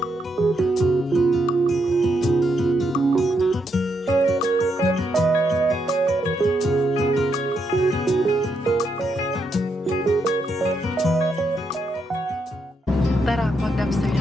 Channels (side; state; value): both; normal; correlation 0.79